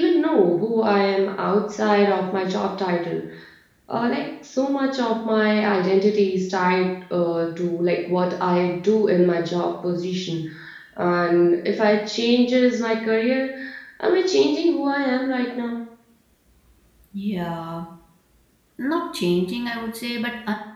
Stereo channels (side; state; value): both; identical; correlation 1.00